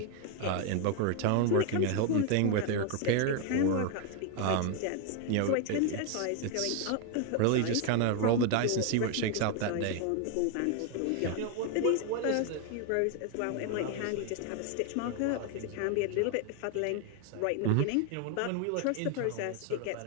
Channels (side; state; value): both; different; correlation 0.01